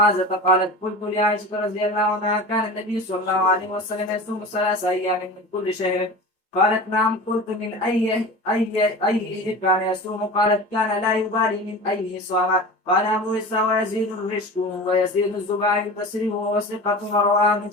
قالت قلت لعائشة رضي الله عنها كان النبي صلى الله عليه وسلم يصوم 3 أيام من كل شهر؟ قالت نعم. قلت من أي كان يصوم؟ قالت كان لا يبالي من أيه صام. قال أبو إسحاق ويزيد الرشد ويزيد الزباعي البصري وهو ثقة ورواه من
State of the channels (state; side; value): normal; both; correlation 0.33